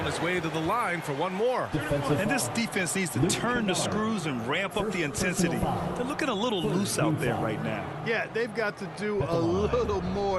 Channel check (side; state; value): both; identical; correlation 1.00